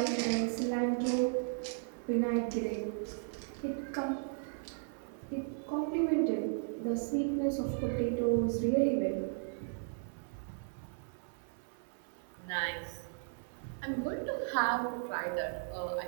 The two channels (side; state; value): left; silent; 54 dB below the other